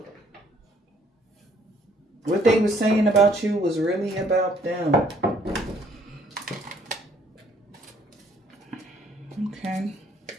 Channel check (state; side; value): normal; both; correlation 0.63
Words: What they were saying about you was really about them. Okay.